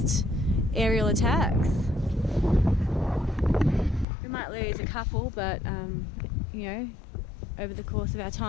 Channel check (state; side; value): drops out; right; at 4.0 s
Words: aerial attacks. We might lose a couple, but you know, over the course of our